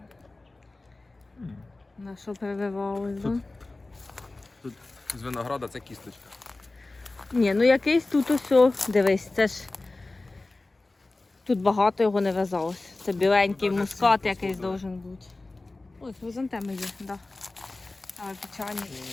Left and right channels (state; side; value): quieter; right; 3.1 dB